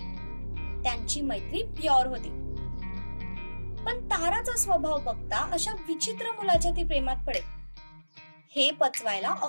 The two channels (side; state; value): both; inverted; correlation -1.00